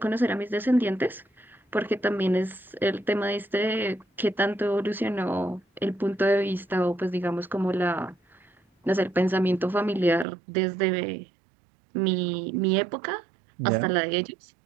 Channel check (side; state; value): left; drops out; at 10.2 s